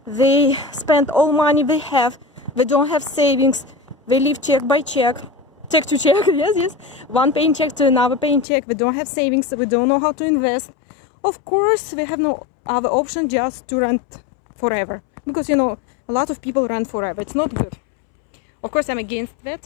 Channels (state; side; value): drops out; right; at 8.5 s